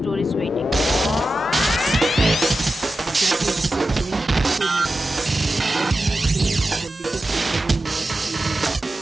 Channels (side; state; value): both; normal; correlation 0.92